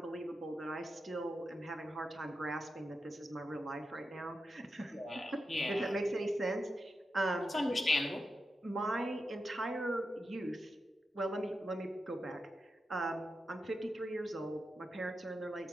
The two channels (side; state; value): both; normal; correlation 0.89